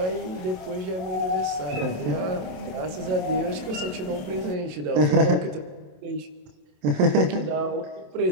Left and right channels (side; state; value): left; late; 27 ms